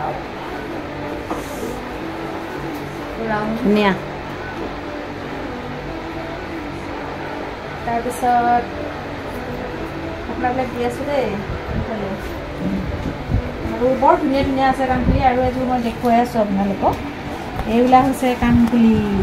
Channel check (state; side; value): identical; both; correlation 1.00